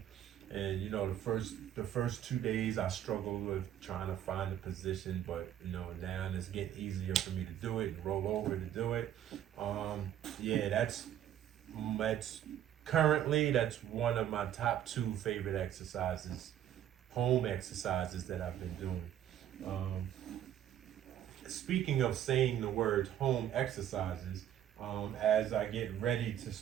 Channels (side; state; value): left; quieter; 10.8 dB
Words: And you know, the first 2 days I struggled with trying to find a position, but you know, now it's getting easier for me to do it and roll over to do it. Yeah, that's currently that's one of my top 2 favorite exercises, home exercises that I've been doing. Speaking of saying the word home exercises, as I get ready to